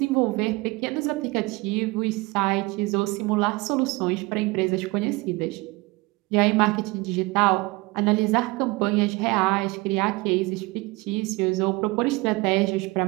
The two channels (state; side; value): quieter; left; 23.4 dB